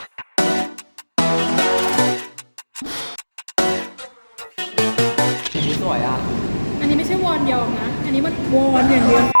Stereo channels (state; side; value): inverted; both; correlation -1.00